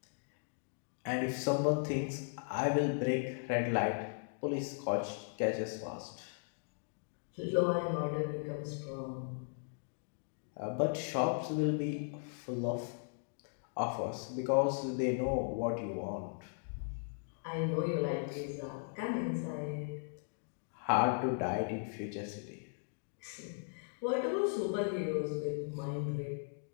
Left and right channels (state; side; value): silent; right; digital silence